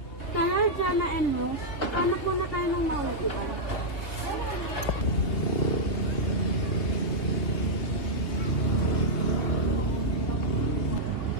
Kaya Jana and Rose, hanap muna tayo ng mauupuan.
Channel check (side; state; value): right; late; 3.4 ms